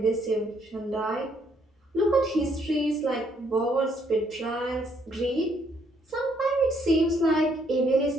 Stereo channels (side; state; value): both; normal; correlation 0.69